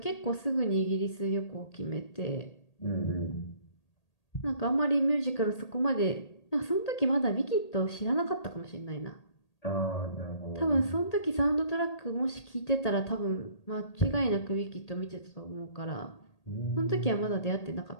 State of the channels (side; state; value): right; late; 1.8 ms